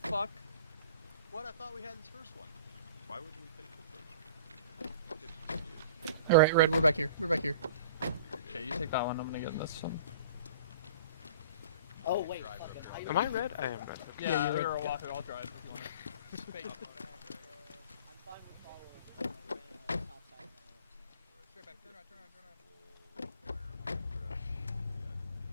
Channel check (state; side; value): inverted; both; correlation -0.44